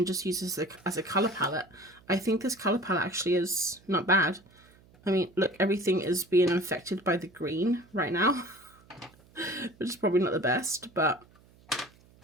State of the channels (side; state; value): right; noise; hum, 28 dB below the sound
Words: just use this as a colour palette. I think this colour palette actually is not bad. I mean, look, everything is being infected by the green right now, which is probably not the best, but